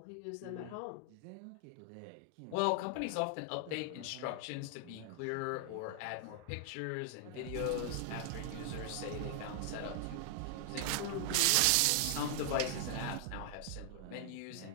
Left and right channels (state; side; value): different; both; correlation 0.00